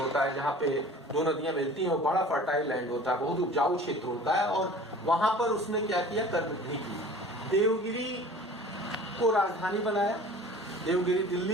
है, जहाँ पे दो नदियां मिलती हैं, वो बड़ा फर्टाइल लैंड होता है, बहुत उपजाऊ क्षेत्र होता है, और वहां पर उसने क्या किया? कर्मटी की। देवगिरी को राजधानी बनाया। देवगिरी,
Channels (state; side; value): normal; both; correlation 0.44